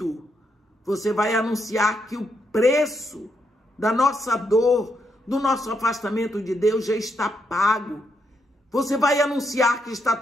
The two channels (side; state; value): both; normal; correlation 0.79